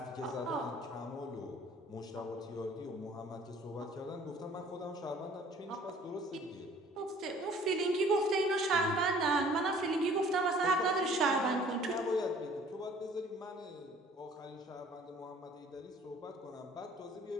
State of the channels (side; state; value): both; normal; correlation 0.53